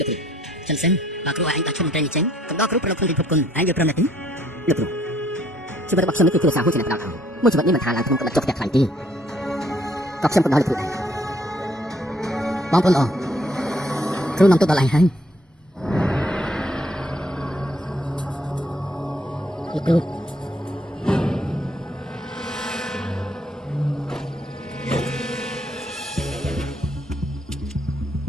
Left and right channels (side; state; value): both; normal; correlation 0.65